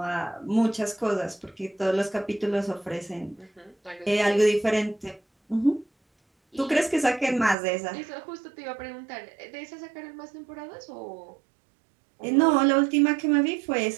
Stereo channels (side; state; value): left; drops out; at 7.6 s